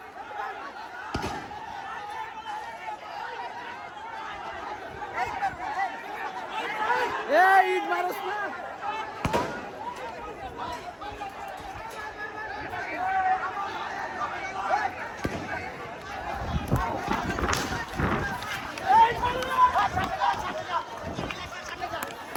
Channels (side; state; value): both; identical; correlation 1.00